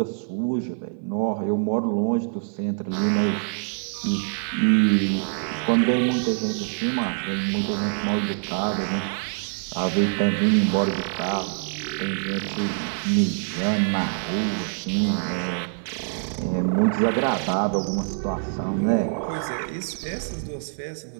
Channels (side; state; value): left; silent; 55 dB below the other